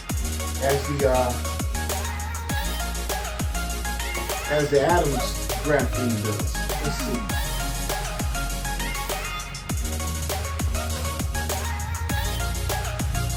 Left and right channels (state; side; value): identical; both; correlation 1.00